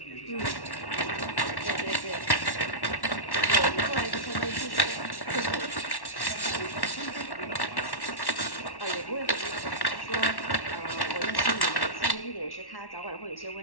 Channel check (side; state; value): right; late; 1.1 ms